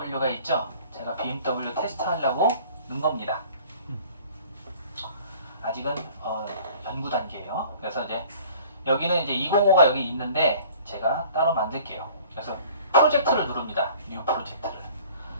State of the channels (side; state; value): both; inverted; correlation -0.50